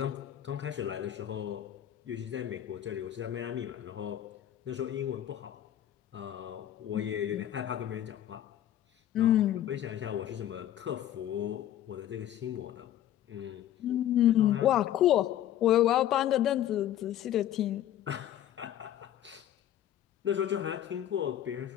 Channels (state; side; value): quieter; right; 11.7 dB